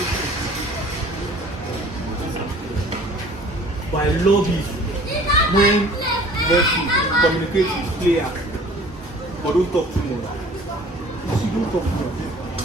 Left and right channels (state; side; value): normal; both; correlation 0.49